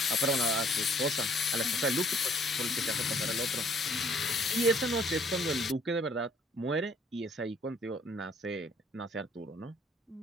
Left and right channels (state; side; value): normal; both; correlation 0.61